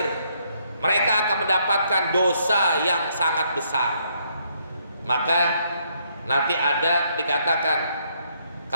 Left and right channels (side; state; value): both; inverted; correlation -0.72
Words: mereka akan mendapatkan dosa yang sangat besar. Maka nanti ada dikatakan,